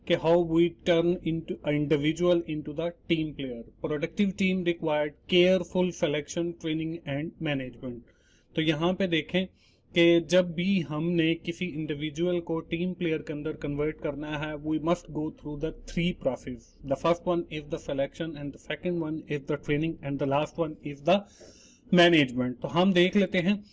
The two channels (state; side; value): identical; both; correlation 1.00